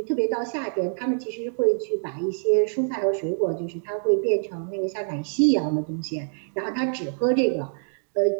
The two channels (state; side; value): silent; left; digital silence